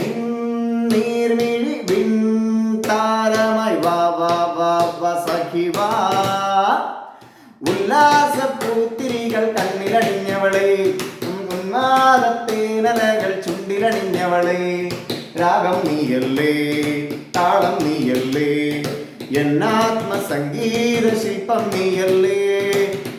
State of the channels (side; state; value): both; identical; correlation 1.00